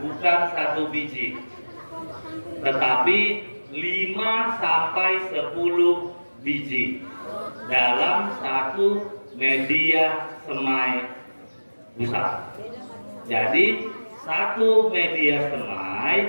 bukan satu biji, tetapi 5 sampai 10 biji dalam satu media semai busa. Jadi satu media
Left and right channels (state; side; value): inverted; both; correlation -1.00